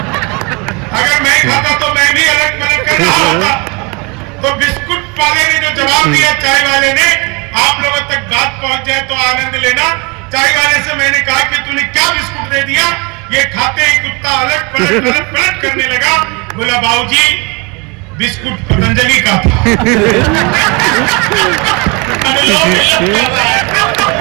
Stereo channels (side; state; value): left; quieter; 29.4 dB